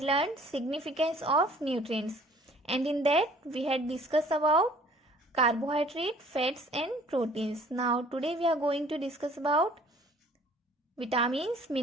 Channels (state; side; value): normal; both; correlation 0.54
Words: learned significance of nutrients, and in that we had discussed about carbohydrate, fats and proteins. Now today we are going to discuss about vitamins,